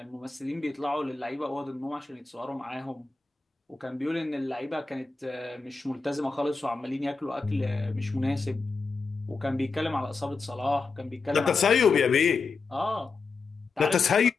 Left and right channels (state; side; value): quieter; right; 4.3 dB